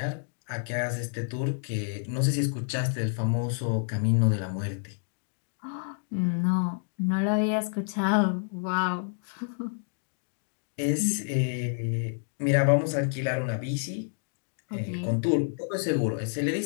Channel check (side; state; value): right; silent; digital silence